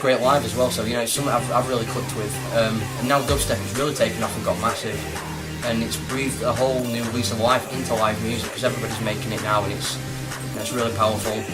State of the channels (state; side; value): identical; both; correlation 1.00